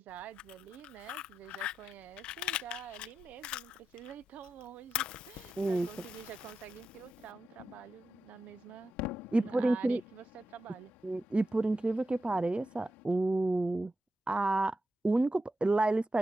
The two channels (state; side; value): normal; both; correlation 0.90